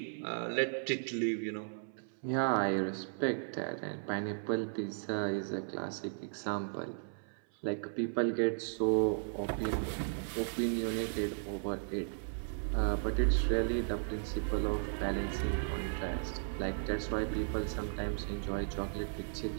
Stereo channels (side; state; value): left; silent; 54 dB below the other